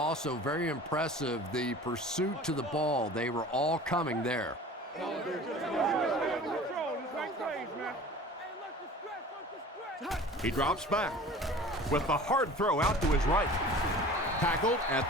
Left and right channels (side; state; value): both; normal; correlation 0.42